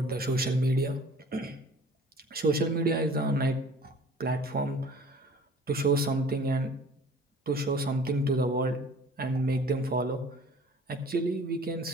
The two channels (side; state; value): both; normal; correlation 0.48